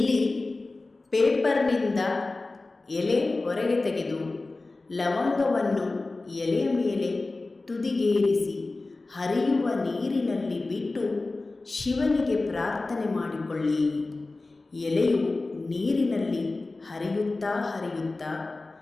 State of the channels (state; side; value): quieter; right; 3.3 dB